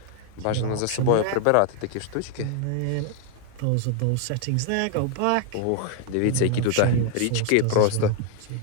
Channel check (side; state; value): both; different; correlation 0.00